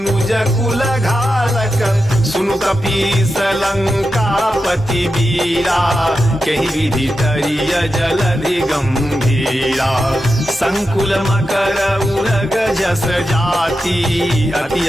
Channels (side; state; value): both; normal; correlation 0.89